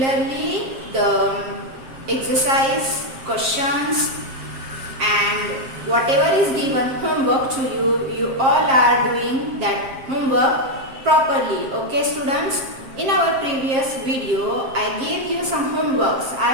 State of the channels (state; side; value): late; left; 7.5 ms